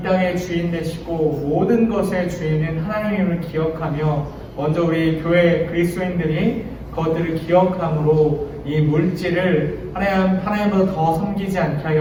주인 되시고 모든 것의 주인은 하나님임을 기억하며 먼저 우리 교회 그리스도인들이 그것들을 기억함으로 이 물질을 하나님보다 더 섬기지 않게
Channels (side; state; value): both; identical; correlation 1.00